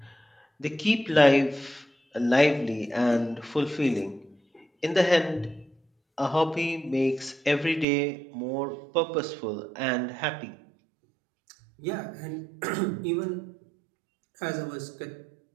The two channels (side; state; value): left; drops out; at 7.9 s